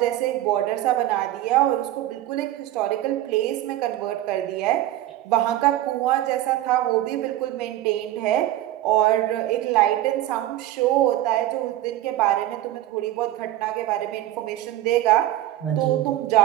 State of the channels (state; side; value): quieter; left; 14.2 dB